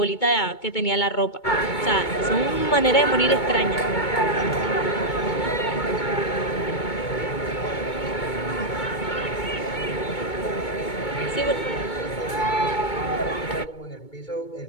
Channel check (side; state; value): right; late; 2.2 ms